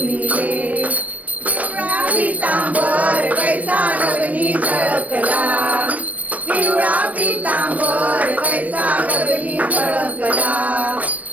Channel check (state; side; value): late; left; 0.071 ms